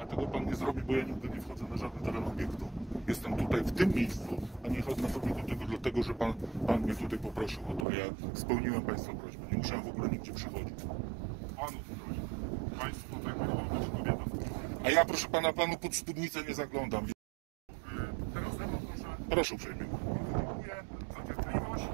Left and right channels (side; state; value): left; drops out; at 7.9 s